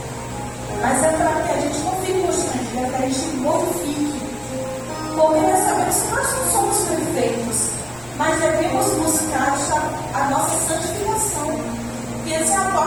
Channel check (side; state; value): left; noise; rumble, 24 dB below the sound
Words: Mas é para que a gente não fique constrangido, é para que a gente glorifique. Porque nós sabemos que nós não somos perfeitos, mas devemos buscar a nossa santificação. E essa é a